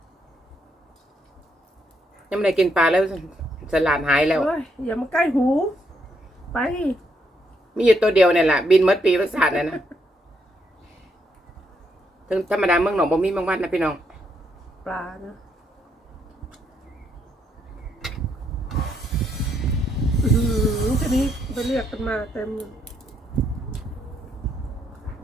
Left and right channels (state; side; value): normal; both; correlation 0.75